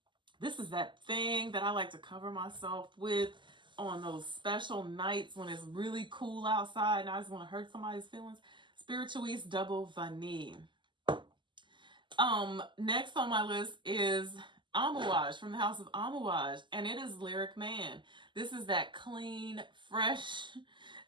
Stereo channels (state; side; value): late; left; 0.23 ms